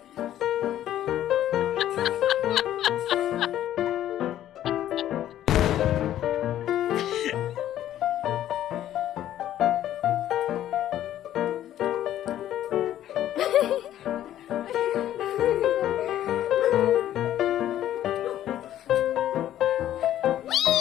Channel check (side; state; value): right; quieter; 12.1 dB